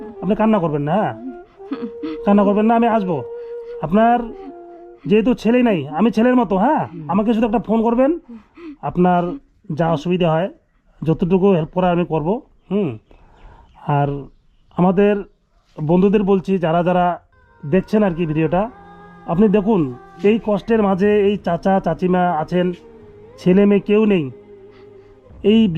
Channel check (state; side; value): identical; both; correlation 1.00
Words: আপনি কান্না করবেন না। হ্যাঁ কান্না করবেন না, আমি আসবো। আপনার যেহেতু ছেলে নাই, আমি ছেলের মতো। হ্যাঁ আমাকে শুধু একটা ফোন করবেন, আপনার যা অসুবিধা হয় যতটুকু হেল্প করা আমি করব। আর আমাদের বন্ধুদের বলছি যারা যারা দেখছেন আর কি ভিডিওটা, আপনি দেখুন এই কষ্টের মাঝে এই চাচা চাচিমা আছেন, ছেলে মেয়ে কেউ নেই, এই